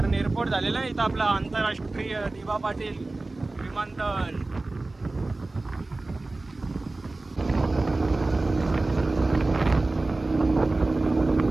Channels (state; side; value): quieter; left; 3.1 dB